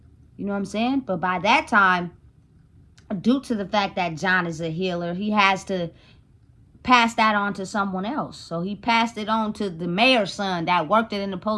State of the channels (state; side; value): identical; both; correlation 1.00